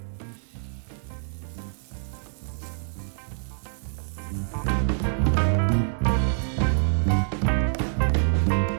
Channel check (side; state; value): left; silent; 61 dB below the other